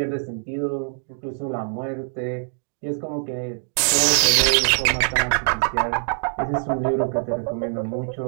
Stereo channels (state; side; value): silent; left; 56 dB below the other